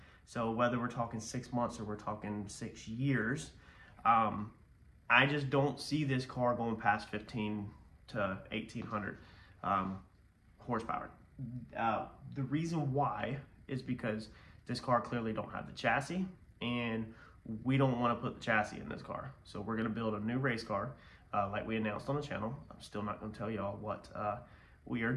So whether we're talking 6 months or we're talking 6 years, I just don't see this car going past 15 to 1,800 horsepower. The reason why is because this car clearly don't have the chassis, and we don't want to put the chassis in this car. So we're going to build a new race car, like we announced on the channel. I'm still not going to tell y'all what we are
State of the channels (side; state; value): both; identical; correlation 1.00